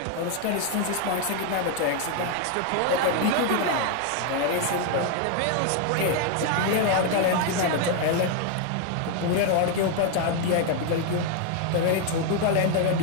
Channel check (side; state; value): both; different; correlation 0.01